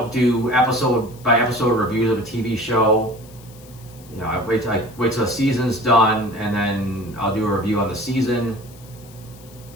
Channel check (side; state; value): left; noise; hiss, 23 dB below the sound